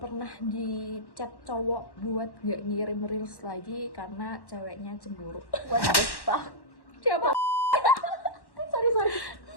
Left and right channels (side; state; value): right; late; 1.1 ms